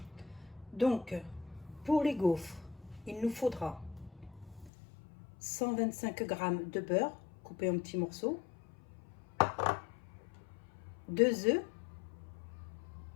Donc pour les gaufres, il nous faudra 125 g de beurre coupé en petits morceaux, 2 œufs,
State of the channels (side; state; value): right; drops out; at 4.7 s